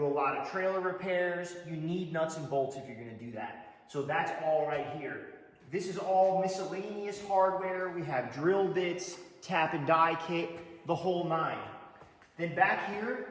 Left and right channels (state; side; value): identical; both; correlation 1.00